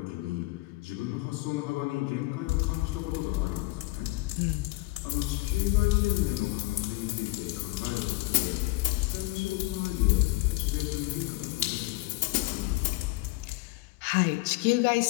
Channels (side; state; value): right; quieter; 21.3 dB